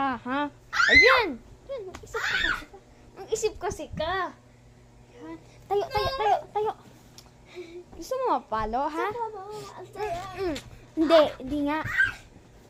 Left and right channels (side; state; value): both; identical; correlation 1.00